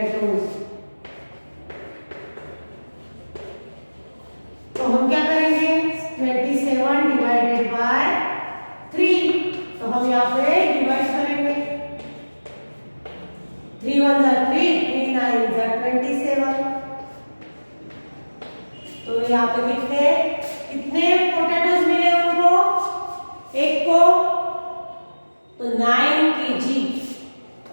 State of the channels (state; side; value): inverted; both; correlation -1.00